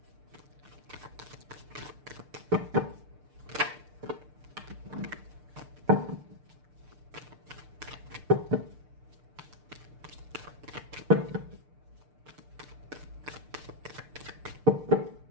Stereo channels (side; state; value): left; late; 6.7 ms